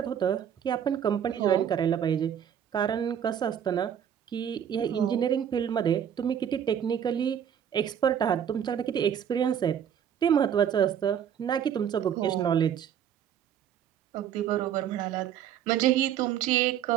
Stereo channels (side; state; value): left; quieter; 9.1 dB